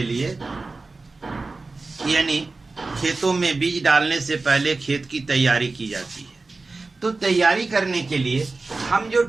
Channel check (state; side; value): quieter; left; 3.6 dB